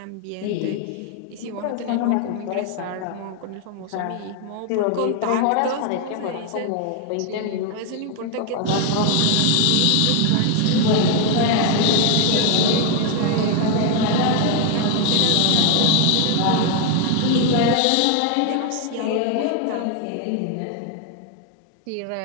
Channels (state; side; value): different; both; correlation 0.01